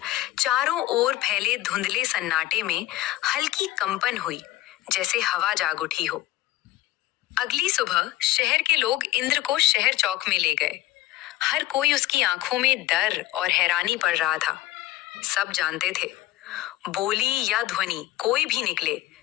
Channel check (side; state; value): right; quieter; 16.0 dB